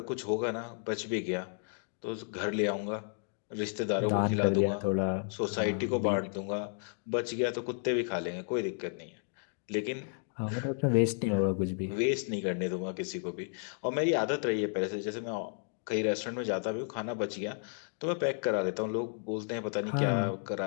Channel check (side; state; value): right; silent; 56 dB below the other